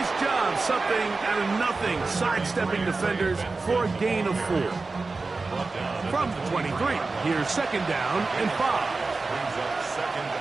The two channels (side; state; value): left; quieter; 3.8 dB